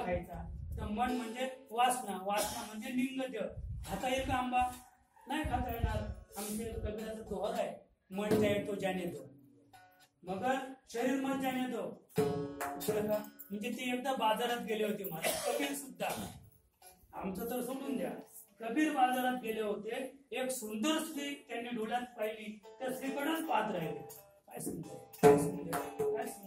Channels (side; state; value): both; identical; correlation 1.00